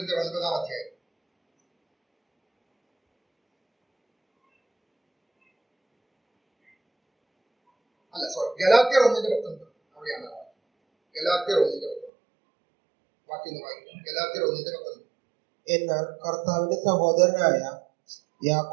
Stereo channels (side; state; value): left; drops out; at 12.1 s